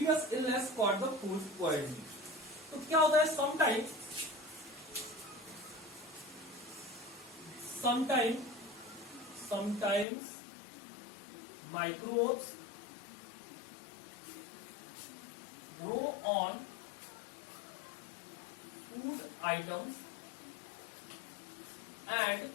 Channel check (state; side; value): drops out; right; at 10.1 s